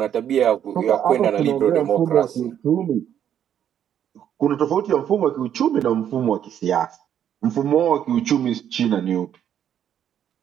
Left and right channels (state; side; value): quieter; left; 9.7 dB